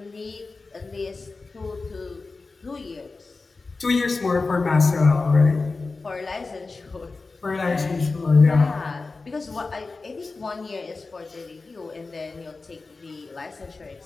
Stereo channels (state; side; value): quieter; right; 3.8 dB